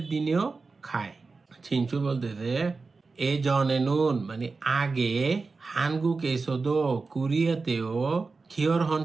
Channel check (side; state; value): left; quieter; 4.1 dB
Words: দিনেও খায়। ছিনসু বলতেছে এ জনে নুন মানে আগে, হানগুক এসোদো কোরিয়াতেও খিয়রহন